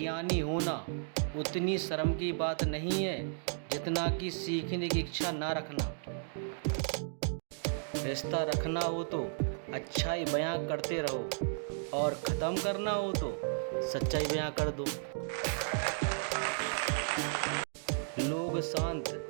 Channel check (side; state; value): left; silent; digital silence